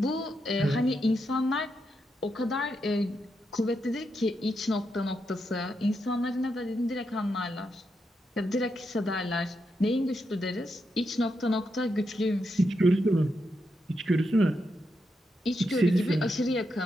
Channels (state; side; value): normal; both; correlation 0.84